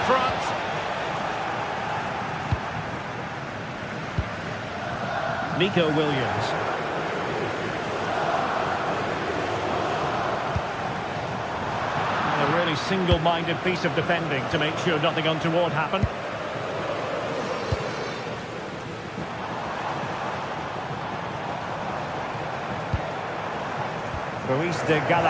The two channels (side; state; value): both; identical; correlation 1.00